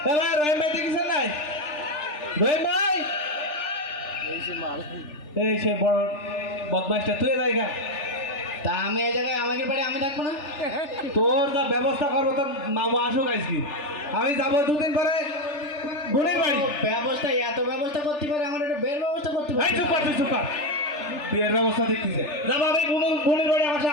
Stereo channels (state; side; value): late; right; 3.4 ms